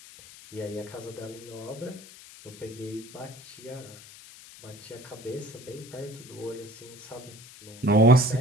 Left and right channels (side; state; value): left; noise; hiss, 18 dB below the sound